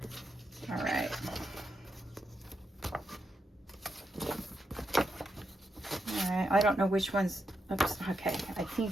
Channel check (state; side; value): normal; both; correlation 0.84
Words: All right. All right, I don't know which one's, oops, okay. I